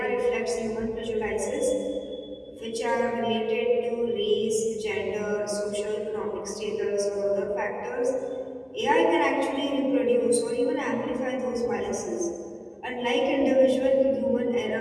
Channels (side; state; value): both; identical; correlation 1.00